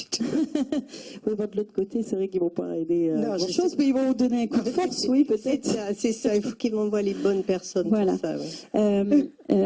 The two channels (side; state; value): both; identical; correlation 1.00